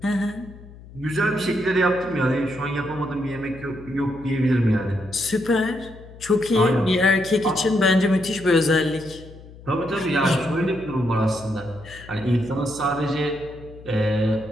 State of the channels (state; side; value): noise; left; hum, 19 dB below the sound